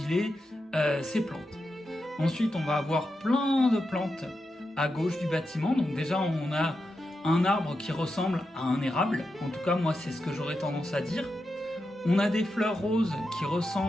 ces plantes. Ensuite, on va avoir plein de plantes à gauche du bâtiment. Donc déjà, on a un arbre qui ressemble à un érable, en tout cas moi c'est ce que j'aurais tendance à dire. On a des fleurs roses qui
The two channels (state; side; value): normal; both; correlation 0.88